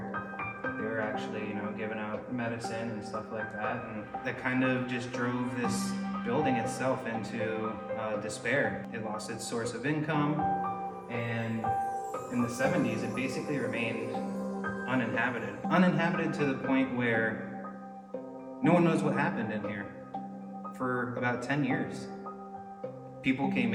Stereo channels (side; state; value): both; identical; correlation 1.00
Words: they were actually, giving out medicine and stuff like that. And that kind of just drove this building itself into despair. It lost its source of income, and in the 70s, it basically remained uninhabited. Uninhabited to the point where no one knows what happened in here for about 10 years. People came